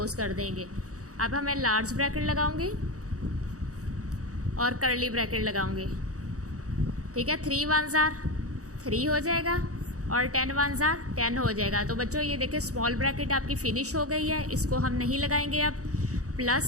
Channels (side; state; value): left; late; 0.66 ms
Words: कर देंगे। अब हमें लार्ज ब्रैकेट लगाऊंगी और कर्ली ब्रैकेट लगाऊंगी, ठीक है। 3 1 ज़ार 3 हो जाएगा और 10 1 ज़ार 10 हो जाएगा। तो बच्चों ये देखिए, स्मॉल ब्रैकेट आपकी फिनिश हो गई है, इसको हम नहीं लगाएंगे। अब